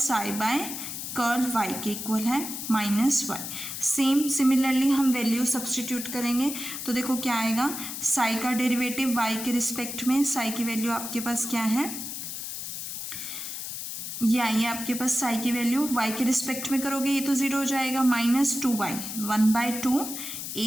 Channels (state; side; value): noise; left; hiss, 6 dB below the sound